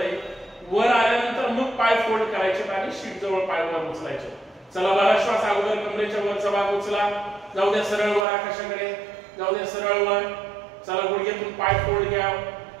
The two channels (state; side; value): drops out; left; at 8.2 s